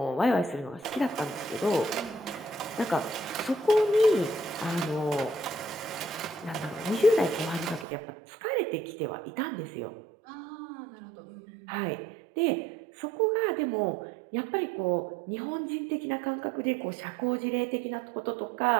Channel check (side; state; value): left; drops out; at 7.9 s